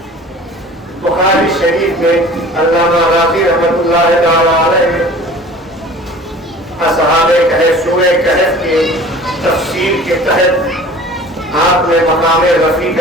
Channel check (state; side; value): normal; both; correlation 0.44